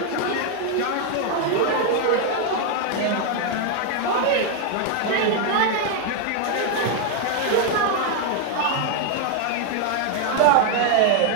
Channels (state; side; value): different; both; correlation 0.01